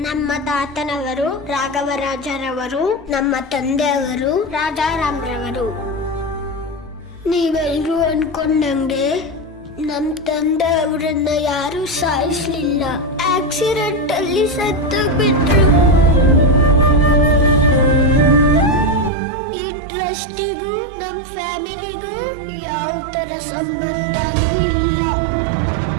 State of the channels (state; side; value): drops out; left; at 19.1 s